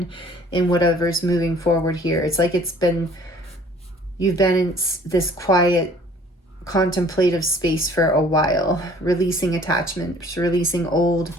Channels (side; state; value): both; normal; correlation 0.54